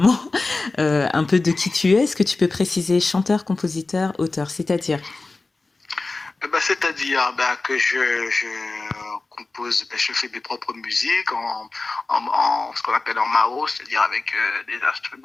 un peu de qui tu es, est-ce que tu peux préciser chanteur, compositeur, auteur, c'est-à-dire? C'est-à-dire que je compose, je fais mes propres musiques en ce qu'on appelle en MAO, c'est-à-dire avec des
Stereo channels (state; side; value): quieter; right; 3.5 dB